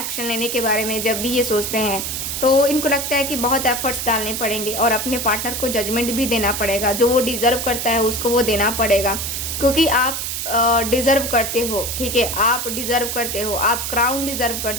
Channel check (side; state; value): right; noise; hiss, 3 dB below the sound